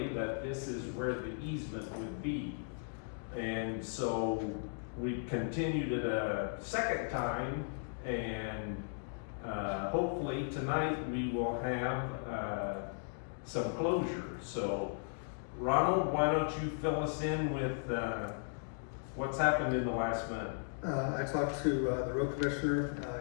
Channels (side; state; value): right; silent; digital silence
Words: that this is where the easement would be. And so we continued it a second time, and hopefully tonight we will have some closure. So Ronald, why don't you fill us in with what's happened in the last month? I talked to the road commissioner.